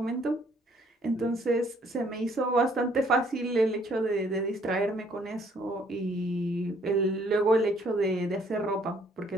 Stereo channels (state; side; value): normal; both; correlation 0.64